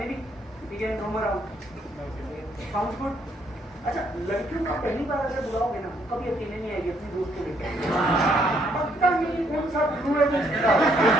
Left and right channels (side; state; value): both; normal; correlation 0.70